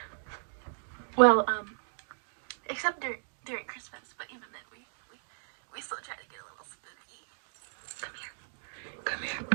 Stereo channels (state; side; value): silent; left; digital silence